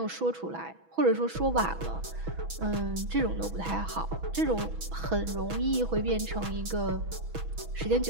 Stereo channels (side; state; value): left; late; 6.1 ms